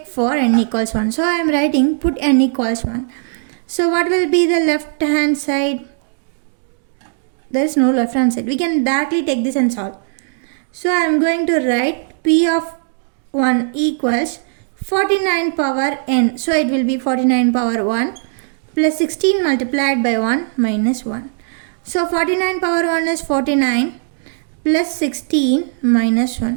for n equals 1. So I am writing put n equals 1. So what will be the left hand side? There is no left hand side. We can directly take this and solve. So I am going to write p of 1 equals 49 power n. So it will be 49 power 1 plus 16 multiplied by 1 minus 1. So 49 power 1 is 49 plus 16 minus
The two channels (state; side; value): silent; left; digital silence